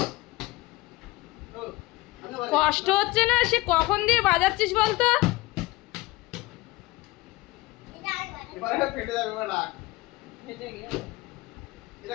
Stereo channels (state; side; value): quieter; right; 20.0 dB